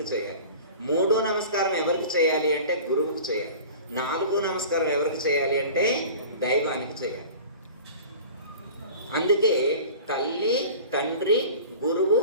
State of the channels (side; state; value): both; inverted; correlation -0.39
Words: చేయాలి. మూడో నమస్కారం ఎవరికి చేయాలి అంటే గురువుకు చేయాలి. నాలుగో నమస్కారం ఎవరికి చేయాలి అంటే దైవానికి చేయాలి. అందుకే తల్లి, తండ్రి, గురువు,